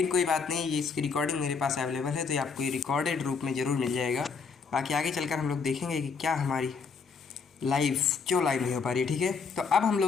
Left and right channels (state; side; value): quieter; right; 5.3 dB